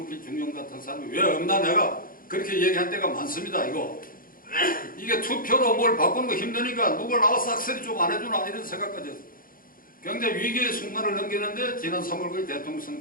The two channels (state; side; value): late; right; 0.41 ms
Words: 중령 같은 사람이 왜 없나 내가 그렇게 얘기한 때가 많습니다. 이게 투표로 뭘 바꾸는 거 힘드니까 누가 나와서 악설이 좀 안 해주나 이런 생각까지 했어요. 굉장히 위기의 순간을 넘기는데 지난 3월 9일 대통령